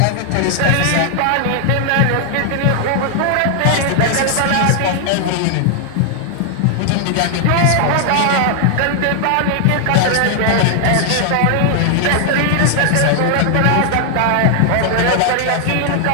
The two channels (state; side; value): different; both; correlation 0.00